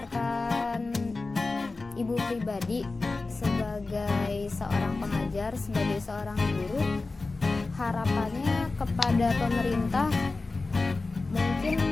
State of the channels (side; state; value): right; quieter; 3.6 dB